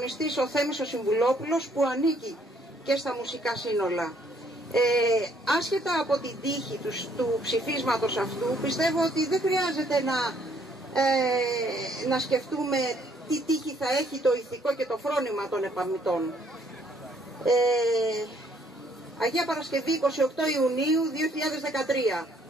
ο Θέμης ο Συμβουλόπουλος, που ανήκει και στα μουσικά σύνολα. Άσχετα από την τύχη του ψηφίσματος αυτού, πιστεύω ότι δεν χρειάζεται να σκεφτούμε τι τύχη θα έχει το ηθικό και το φρόνημα των επαμιτών. Αγία Παρασκευή, 28 Ιουνίου 2013.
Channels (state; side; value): normal; both; correlation 0.65